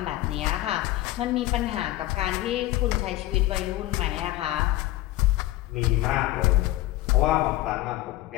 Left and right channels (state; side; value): quieter; right; 16.3 dB